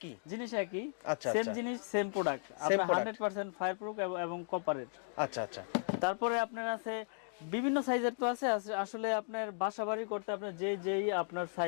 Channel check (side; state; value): right; silent; digital silence